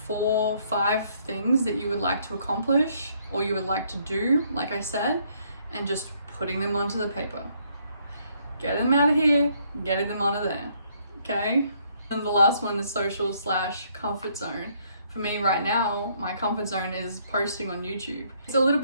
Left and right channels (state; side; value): inverted; both; correlation -0.68